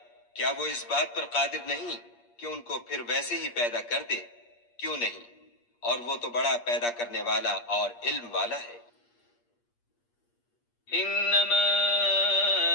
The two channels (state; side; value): late; right; 8.5 ms